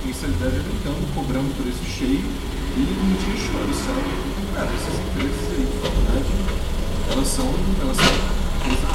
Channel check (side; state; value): both; identical; correlation 1.00